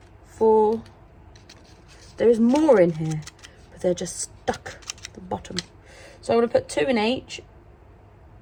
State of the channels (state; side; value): identical; both; correlation 1.00